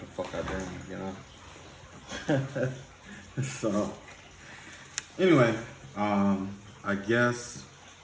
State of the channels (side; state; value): both; identical; correlation 1.00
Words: the fuck I dreamed, you know? So anyway, I guess